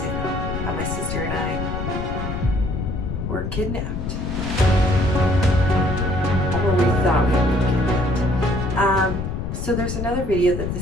How my sister and I were kidnapped. Or we thought we were kidnapped. So there's another video that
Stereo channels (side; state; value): left; noise; rumble, 4 dB below the sound